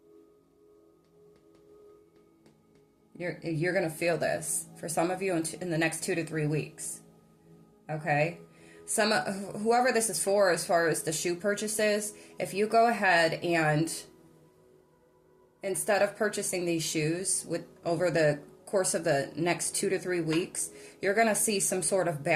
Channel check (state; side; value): identical; both; correlation 1.00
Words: You're going to feel this for some of you in the next 2 to 3 weeks. Okay. Whoever this is for, as far as the shoe purchases, if you go ahead and instead of purchasing these shoes over the course of the next 2 to 3 weeks, you're going to see some sort of